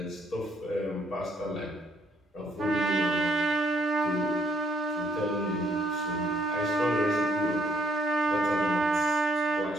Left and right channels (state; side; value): normal; both; correlation 0.69